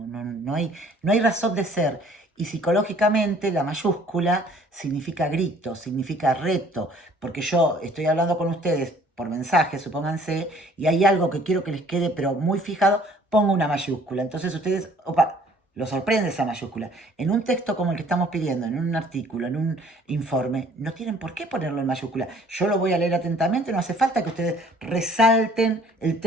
no hay razón de ser. Y psicológicamente la mayúscula significa grito, significa reto, porque yo estoy hablando con ustedes por mensaje, supónganse, y hay algo que quiero que les quede, pero muy fijado, pongo una mayúscula. Entonces ustedes, opa, lo sorprende esa mayúscula. En un texto como el que estamos pidiendo, en un artículo, en un informe, no tienen por qué ponerlo en mayúscula. Yo lo voy a leer atentamente, no hace falta que ustedes resalten el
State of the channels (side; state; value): both; normal; correlation 0.57